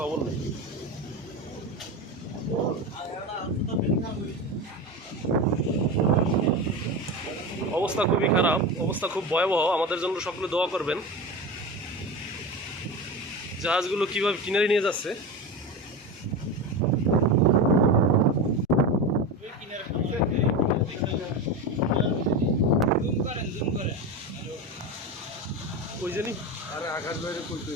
নেই। অবস্থা খুবই খারাপ, অবস্থা খুব ভয়াবহ। আমাদের জন্য সকলে দোয়া করবেন। জাহাজগুলো কিভাবে কিনারে নিয়ে যাচ্ছে। ওই জানি আরে আকাশ বাইরে কইতে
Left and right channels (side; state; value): both; normal; correlation 0.23